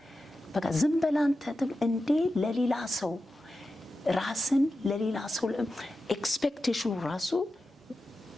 በቃ ዝም በላንተ እንዴ ለሌላ ሰው ራስን ለሌላ ሰው ኤክስፔክቴሽኑ ራሱ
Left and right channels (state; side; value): normal; both; correlation 0.91